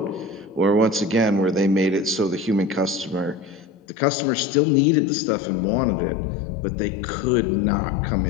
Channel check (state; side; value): drops out; right; at 3.7 s